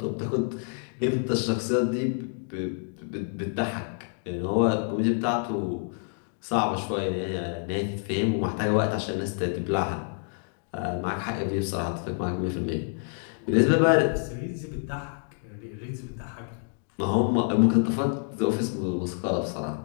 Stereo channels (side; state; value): right; silent; 60 dB below the other